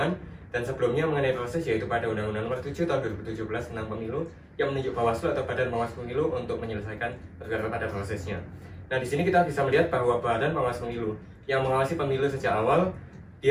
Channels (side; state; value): both; identical; correlation 1.00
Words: dan sebelumnya mengenai proses yaitu pada Undang-Undang Nomor 7 Tahun 2017 tentang Pemilu yang menunjuk Bawaslu atau Badan Pengawas Pemilu untuk menyelesaikan perkara pada prosesnya. Nah, di sini kita bisa melihat bahwa Badan Pengawas Pemilu yang mengawasi pemilu sejak awal,